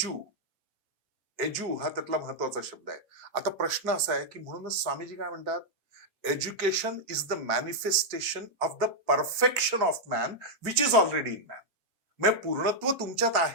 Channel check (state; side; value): normal; both; correlation -0.03